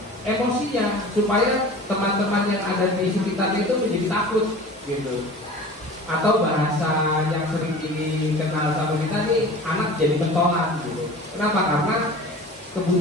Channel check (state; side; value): normal; both; correlation 0.39